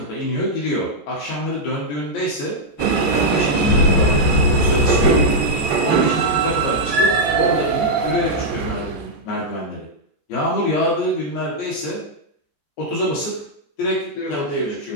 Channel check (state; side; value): late; right; 13 ms